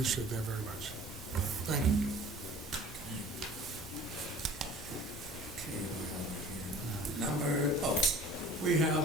that very much. Thank you. We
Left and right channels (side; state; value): both; normal; correlation 0.46